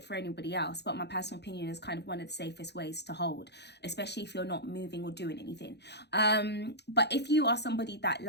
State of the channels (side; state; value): right; late; 0.49 ms